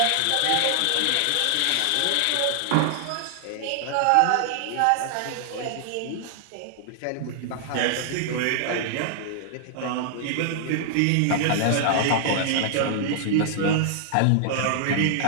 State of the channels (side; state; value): both; different; correlation -0.01